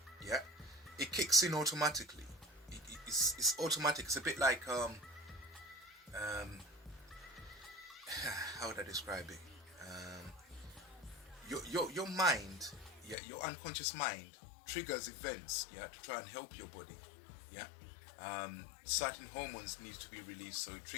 Yeah, it kicks in automatically. It's automatic. It's a bit like how would I describe it? Your mind, yeah, your unconscious mind triggers events, yeah, to try and help your body. Yeah, certain hormones need to be released, so it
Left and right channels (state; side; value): drops out; right; at 13.2 s